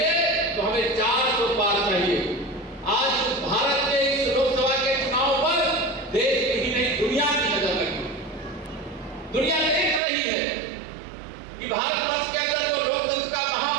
तो हमें 400 पार चाहिए। आज भारत के इस लोकसभा के चुनाव पर देश की ही नहीं दुनिया की नजर लगी। दुनिया देख रही है कि भारत वर्ष के अंदर जो लोकतंत्र का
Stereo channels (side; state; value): left; drops out; at 10.0 s